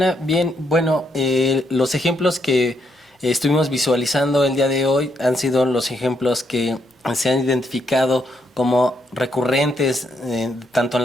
Bien, bueno, los ejemplos que estuvimos visualizando el día de hoy han sido los ejemplos que se han identificado como recurrentes, tanto en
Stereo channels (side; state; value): both; normal; correlation 0.77